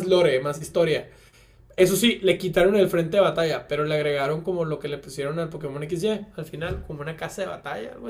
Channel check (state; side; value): identical; both; correlation 1.00